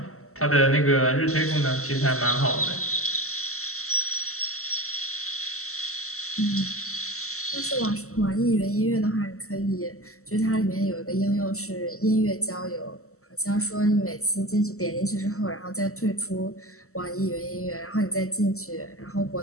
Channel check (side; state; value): right; late; 0.63 ms